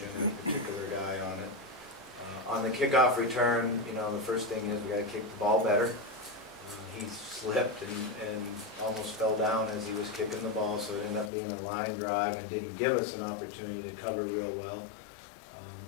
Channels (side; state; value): right; drops out; at 11.3 s